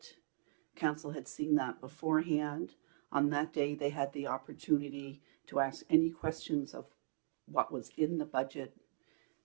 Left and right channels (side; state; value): left; silent; digital silence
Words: Council had seen that beforehand. On that day, they had the opportunity to ask any questions of what was in the budget.